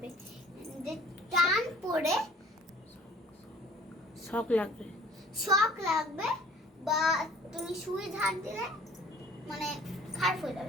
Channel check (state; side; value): normal; both; correlation 0.52